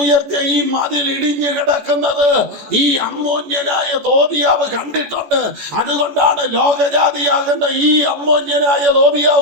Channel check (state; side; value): late; left; 14 ms